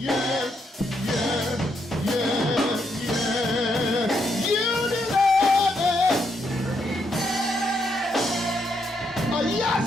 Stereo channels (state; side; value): normal; both; correlation 0.77